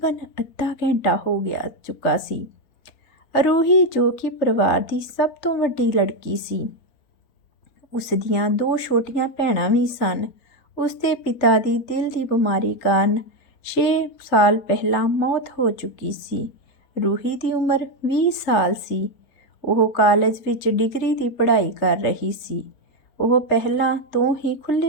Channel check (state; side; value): late; right; 3.9 ms